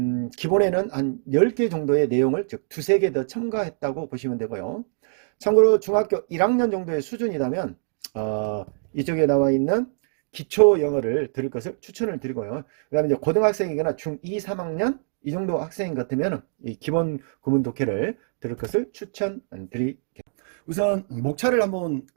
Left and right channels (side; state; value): left; silent; digital silence